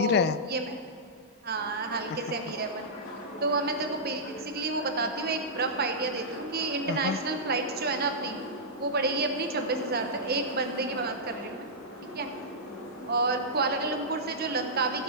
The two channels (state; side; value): normal; both; correlation -0.13